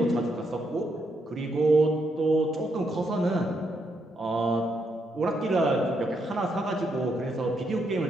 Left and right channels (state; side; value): normal; both; correlation 0.78